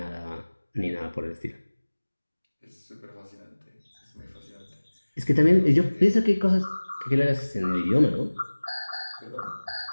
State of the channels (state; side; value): inverted; both; correlation -1.00